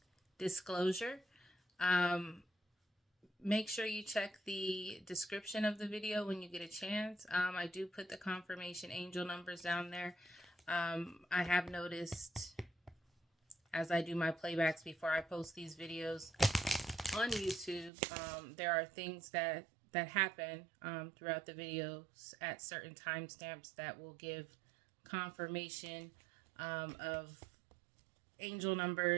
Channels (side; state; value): left; drops out; at 17.9 s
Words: disclosure. Make sure you check the description of the video when you get a chance. I do put the confirmation angel numbers down there. I have noticed as I do my playbacks before I post these videos on YouTube, there are things that happen throughout the videos at certain timestamps that will give confirmation of angel